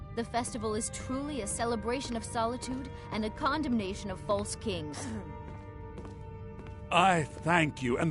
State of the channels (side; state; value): both; identical; correlation 1.00